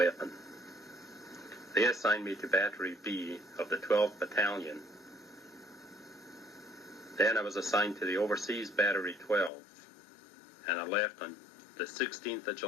They assigned me to Battery B of the 12th Battalion. Then I was assigned to the Overseas Battery 12, and I left on the 16th of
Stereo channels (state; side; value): drops out; right; at 9.5 s